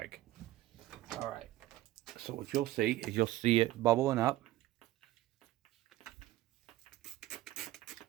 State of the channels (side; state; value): left; quieter; 15.8 dB